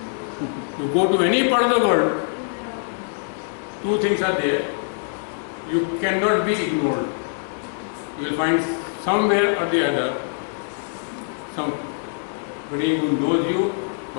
You go to any part of the world, 2 things are there. You cannot be ignored. You will find somewhere or the other somebody who knows you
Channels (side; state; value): right; silent; digital silence